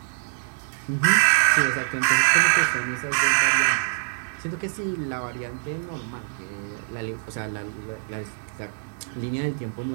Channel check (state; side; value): silent; left; digital silence